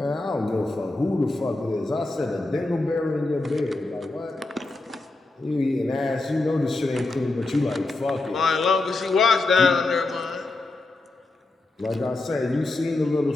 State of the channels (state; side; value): quieter; right; 3.1 dB